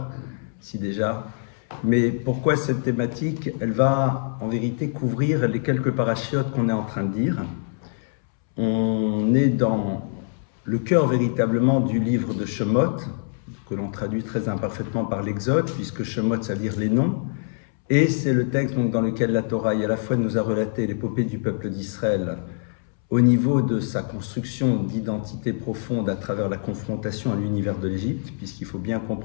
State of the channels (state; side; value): silent; right; 62 dB below the other